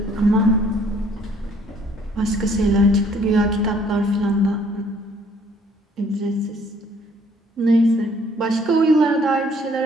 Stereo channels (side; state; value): both; normal; correlation 0.61